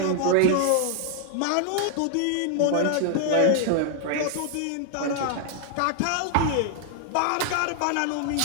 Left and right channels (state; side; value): different; both; correlation 0.00